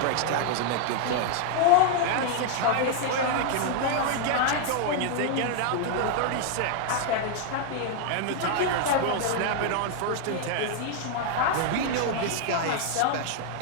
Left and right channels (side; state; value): both; different; correlation 0.00